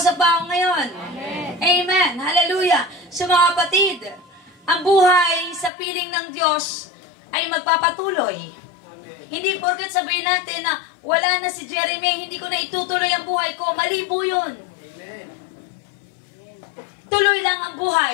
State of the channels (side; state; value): right; drops out; at 5.7 s